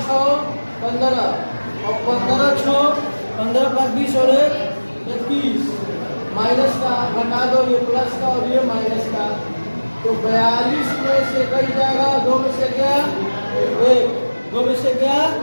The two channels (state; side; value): inverted; both; correlation -1.00